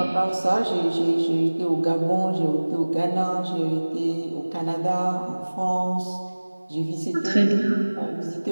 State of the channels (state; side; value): inverted; both; correlation -1.00